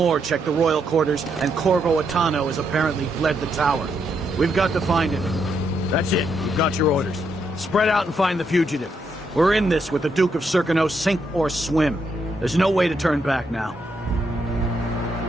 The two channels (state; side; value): normal; both; correlation 0.78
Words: checked the royal quarters, and Corvo Attano has apparently fled the tower. We've got to find him. That's it. You've got your orders. Spread out and find the fugitive. We're in this with the Duke of Circano, sink or swim. There's no way to turn back now.